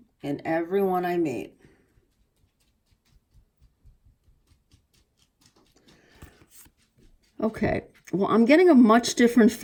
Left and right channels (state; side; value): identical; both; correlation 1.00